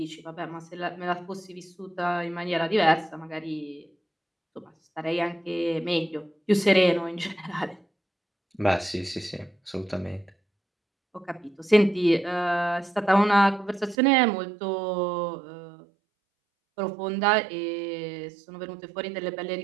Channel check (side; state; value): left; drops out; at 14.0 s